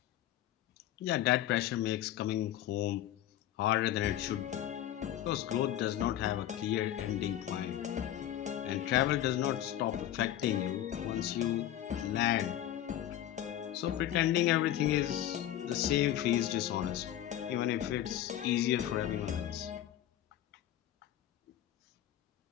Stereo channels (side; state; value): right; quieter; 12.2 dB